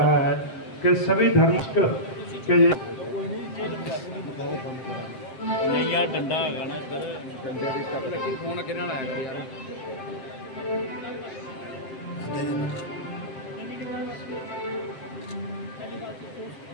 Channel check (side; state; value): right; late; 7.6 ms